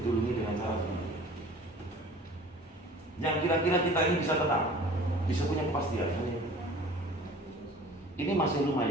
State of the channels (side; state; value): both; normal; correlation 0.46